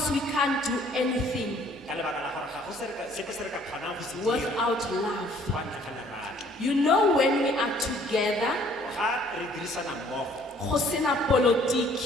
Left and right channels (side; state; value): both; normal; correlation 0.59